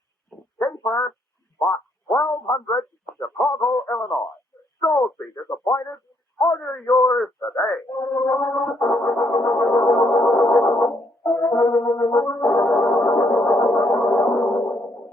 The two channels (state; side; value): normal; both; correlation 0.71